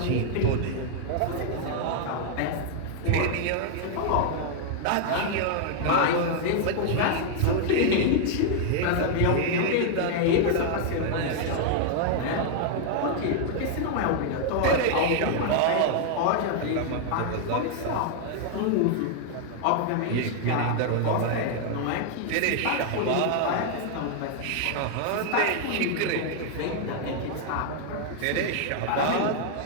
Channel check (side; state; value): both; different; correlation 0.00